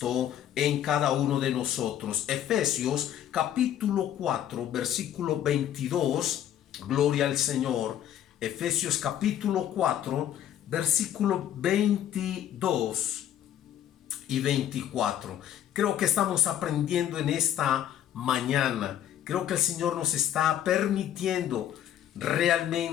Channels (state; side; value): quieter; right; 10.9 dB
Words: en cada uno de nosotros. Efesios capítulo 4, versículo 22, gloria al Señor. Efesios capítulo 4, versículo 22 y 24. Creo que estamos aprendiendo en esta mañana. Creo que el Señor nos está permitiendo